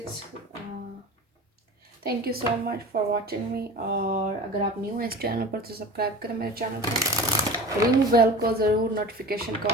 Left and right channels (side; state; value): both; normal; correlation 0.36